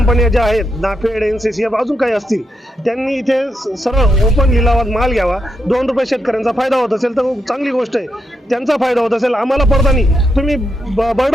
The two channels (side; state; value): both; normal; correlation 0.83